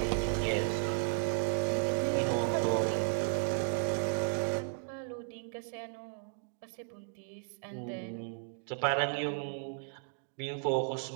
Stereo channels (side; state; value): left; silent; digital silence